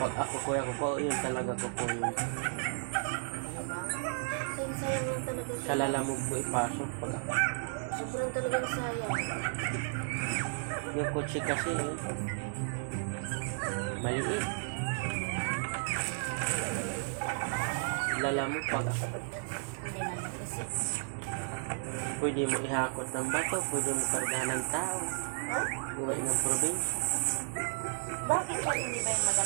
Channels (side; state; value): left; silent; 55 dB below the other